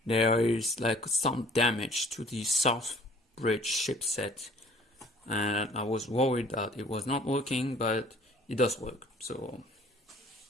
there is like some damage to the South Bridge chipset, and I was worried that it was not working, but it does work. So,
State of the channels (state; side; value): normal; both; correlation 0.53